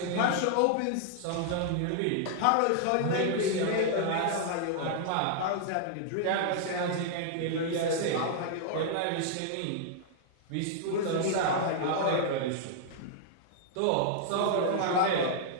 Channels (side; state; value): both; different; correlation -0.01